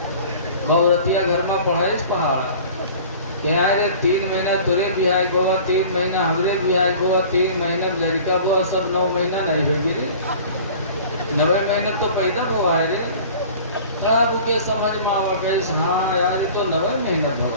وہ عورتیا گھر میں پڑھائش پہاڑا کہ آئے 3 مہینہ تیرے بہائے گوا, 3 مہینہ ہمارے بہائے گوا, 3 مہینہ لڑکا ہوا, سب 9 مہینہ نہیں ہوگی رے. 9 مہینہ تو پیدا ہوا ہے رے. تب وہ سمجھ میں آوا کہ ہاں یار یہ تو 9 مہینہ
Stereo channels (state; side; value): inverted; both; correlation -0.44